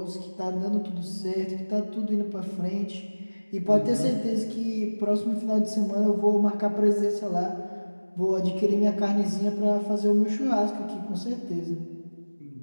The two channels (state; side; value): inverted; both; correlation -1.00